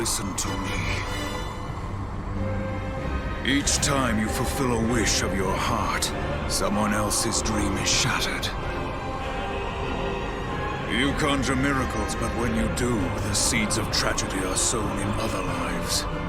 to me. Each time you fulfill a wish of your heart, someone else's dream is shattered. You conjure miracles, but when you do, the seeds of tragedy are sown in other lives.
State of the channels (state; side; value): identical; both; correlation 1.00